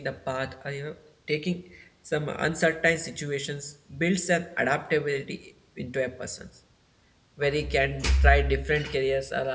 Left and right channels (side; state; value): both; identical; correlation 1.00